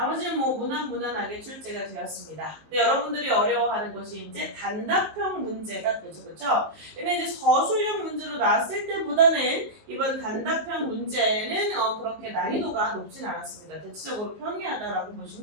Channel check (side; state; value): left; late; 19 ms